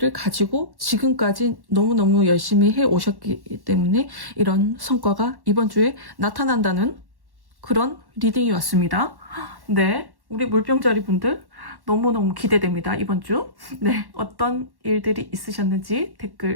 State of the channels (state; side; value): late; left; 1.1 ms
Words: 가지고 지금까지 너무너무 열심히 해 오셨기 때문에 이런 성과가 이번 주에 나타난다는 그런 리딩이 왔습니다. 네, 우리 물병자리 분들 너무너무 기대됩니다. 이번 주. 네, 어떤 일들이 있으셨는지